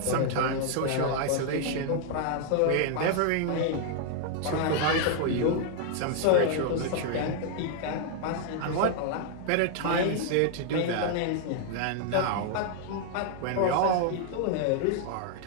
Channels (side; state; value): both; different; correlation 0.00